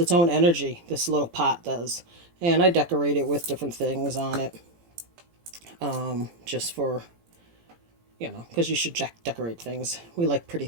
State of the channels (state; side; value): late; left; 17 ms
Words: own energy. This little pot does, and I decorate it with different things on it. Just for, because you should decorate things. We like pretty